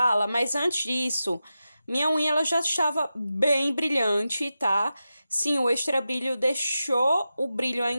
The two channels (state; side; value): inverted; both; correlation -0.92